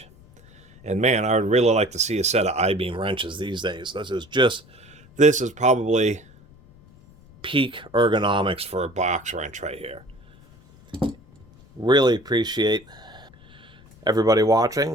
And man, I would really like to see a set of I-beam wrenches these days. This is probably peak ergonomics for a box wrench right here. Really appreciate everybody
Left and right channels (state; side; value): noise; left; rumble, 26 dB below the sound